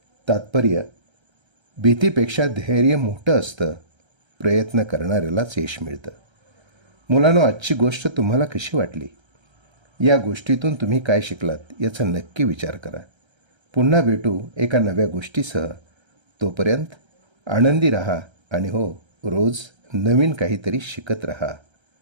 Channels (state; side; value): late; left; 1.3 ms